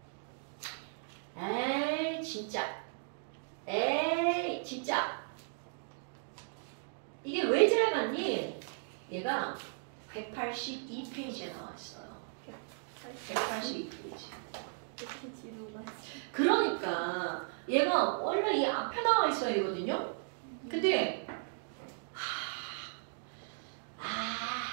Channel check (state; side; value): silent; left; digital silence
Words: 에이, 진짜. 이게 왜 지나갔니? 얘가 182페이지에 나와 있어요. 182페이지. 이렇게 지루가. 그러니까 얘가 원래 이 앞에 나와 있어야 되거든요. 근데